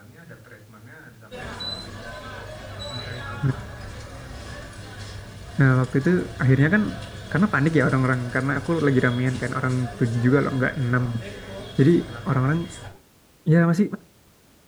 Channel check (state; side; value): identical; both; correlation 1.00